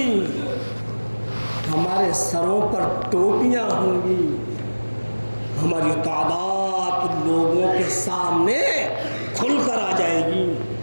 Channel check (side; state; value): both; inverted; correlation -1.00